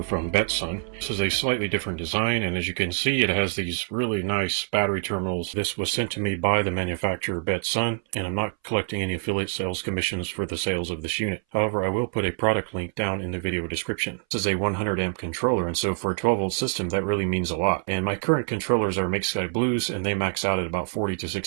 from Betsun. This is a slightly different design, and as you can see, it has these really nice battery terminals. This was sent to me by the manufacturer Betsun, and I'm not collecting any affiliate sales commissions for the sales of this unit. However, I will put a product link down in the video description. This is a 100 amp controller, and so for a 12 volt system, that really means a lot. And my current controllers are MakeSkyBlues, and they max out at about 40 to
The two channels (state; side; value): silent; left; 59 dB below the other